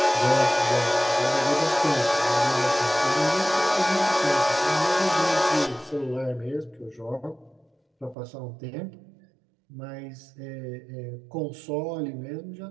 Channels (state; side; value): drops out; left; at 8.2 s